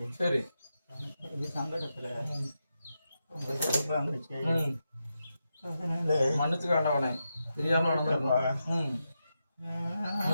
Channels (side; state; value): both; inverted; correlation -0.88